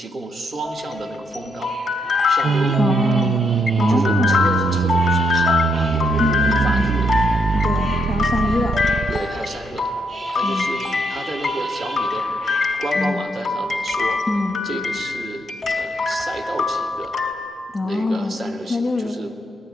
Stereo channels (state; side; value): normal; both; correlation 0.76